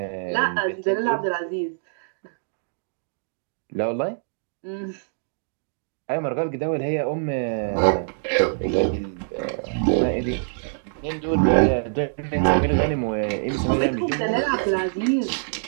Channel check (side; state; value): left; silent; digital silence